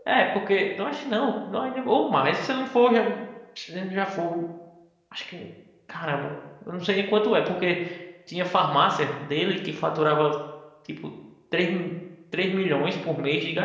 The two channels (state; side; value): identical; both; correlation 1.00